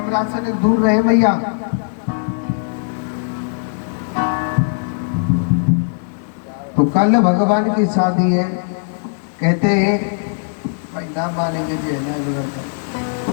से दूर रहे भैया। तो कल भगवान की शादी है, कहते हैं भाई नाम मानेंगे जी है ना।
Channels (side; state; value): right; silent; digital silence